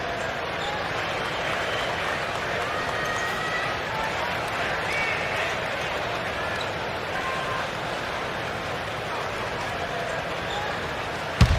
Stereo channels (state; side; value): identical; both; correlation 1.00